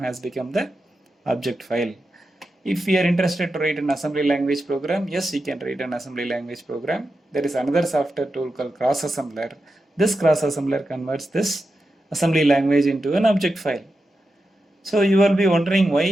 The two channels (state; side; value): normal; both; correlation 0.89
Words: become the object file. If we are interested to write an assembly language program, yes, we can write an assembly language program. There is another software tool called Cross Assembler. This Cross Assembler converts this assembly language into an object file. So you will be wondering